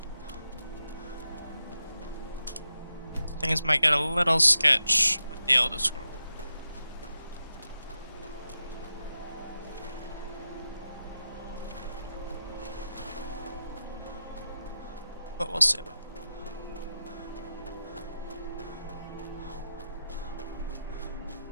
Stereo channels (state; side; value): inverted; both; correlation -0.89